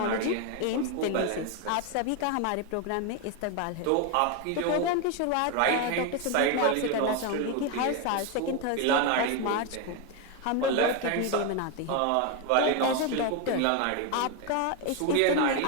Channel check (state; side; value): different; both; correlation 0.02